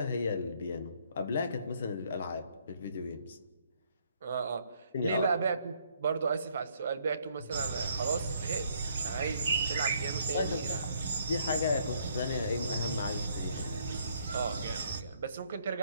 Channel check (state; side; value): inverted; both; correlation -0.67